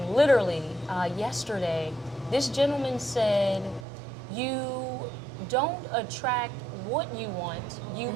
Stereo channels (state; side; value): drops out; left; at 3.9 s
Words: literally, yesterday. This gentleman said, you don't attract what you want, you